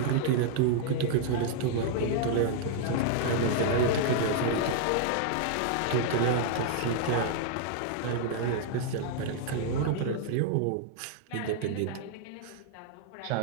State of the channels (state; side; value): different; both; correlation -0.01